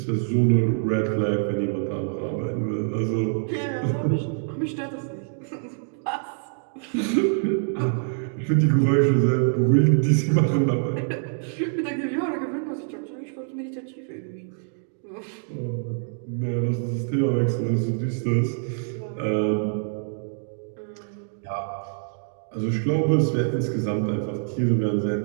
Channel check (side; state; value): left; silent; digital silence